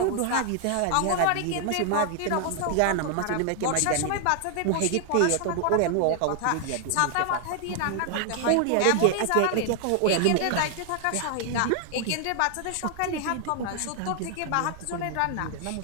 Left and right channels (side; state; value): both; different; correlation 0.00